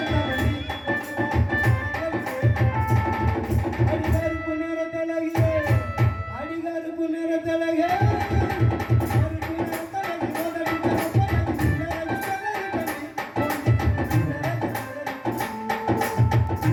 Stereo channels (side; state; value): both; identical; correlation 1.00